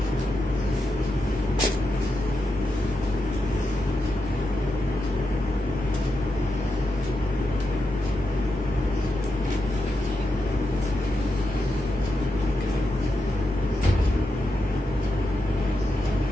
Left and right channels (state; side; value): normal; both; correlation 0.87